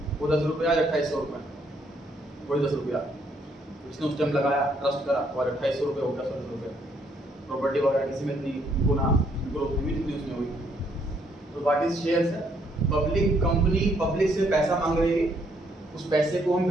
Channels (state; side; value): normal; both; correlation 0.70